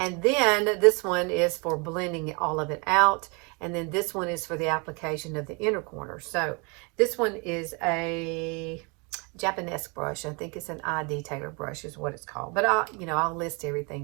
then this one is for blending all of it out. And then this one is for the application of the inner corner. So this one is a Japanese brush. I think it's an eye detailer brush is what it's called. But I'll list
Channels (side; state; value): left; quieter; 31.9 dB